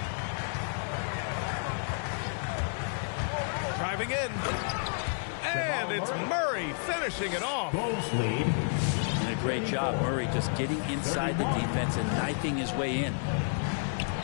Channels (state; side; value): silent; right; digital silence